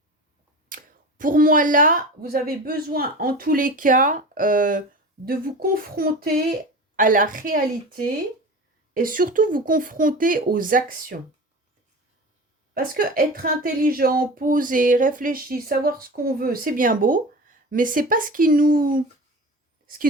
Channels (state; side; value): normal; both; correlation 0.33